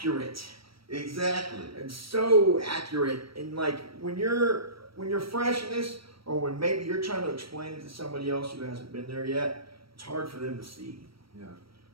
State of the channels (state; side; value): late; left; 0.75 ms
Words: exactly. It's so accurate. And like when you're fresh in this, or when maybe you're trying to explain it to somebody else who hasn't been there yet, it's hard for them to see. Yeah.